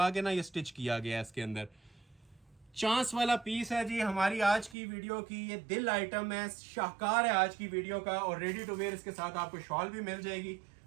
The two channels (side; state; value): left; drops out; at 4.8 s